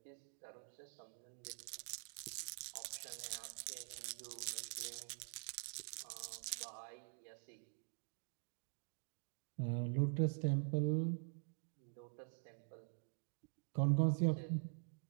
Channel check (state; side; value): silent; left; digital silence